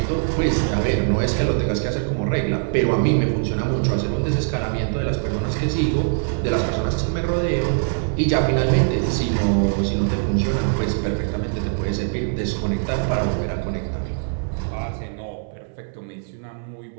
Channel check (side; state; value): left; silent; 64 dB below the other